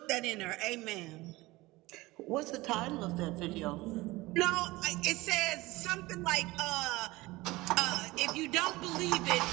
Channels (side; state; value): left; quieter; 20.4 dB